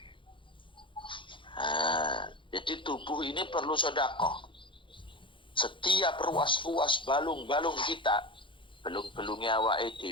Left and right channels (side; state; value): right; late; 0.24 ms